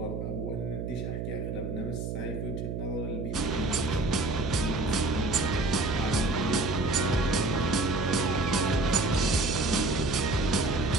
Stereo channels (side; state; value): right; noise; hum, 4 dB below the sound